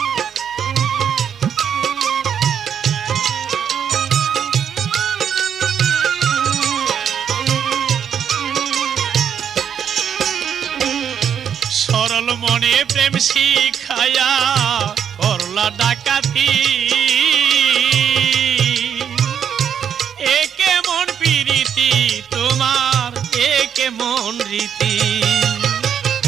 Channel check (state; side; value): quieter; left; 8.2 dB